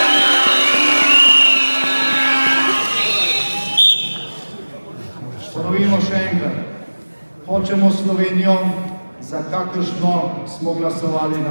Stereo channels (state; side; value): inverted; both; correlation -1.00